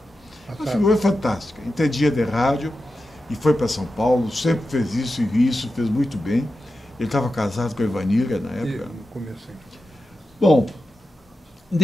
Uma figura fantástica, entendia de rádio e foi para São Paulo, sempre fez isso e isso, fez muito bem. Ele estava casado com a Ivanira na época. Bom,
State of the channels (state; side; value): normal; both; correlation 0.91